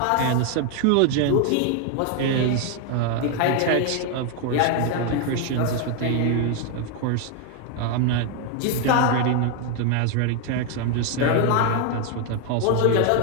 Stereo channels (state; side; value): different; both; correlation 0.01